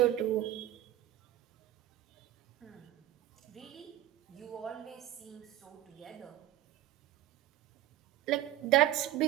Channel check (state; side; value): quieter; left; 14.0 dB